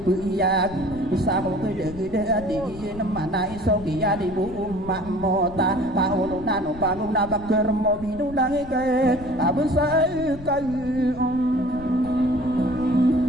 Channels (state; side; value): noise; left; rumble, 16 dB below the sound